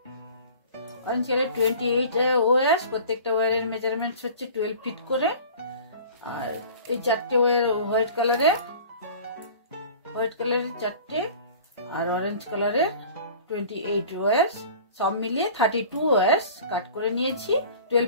অরেঞ্জ কালারের 28 ওয়্যার্স, প্রত্যেকটা ওয়্যারের মেজারমেন্ট হচ্ছে 12 ফিট করে। আর এই চারটে ওয়্যার হোয়াইট কালারের 4টে, আর অরেঞ্জ কালারের 28 ওয়্যার্স, সব মিলিয়ে 32 ওয়্যার্স কাট করে নিয়েছি 12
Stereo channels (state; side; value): inverted; both; correlation -0.43